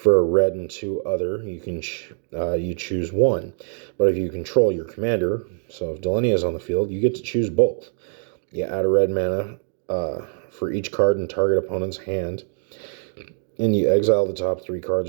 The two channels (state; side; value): silent; left; digital silence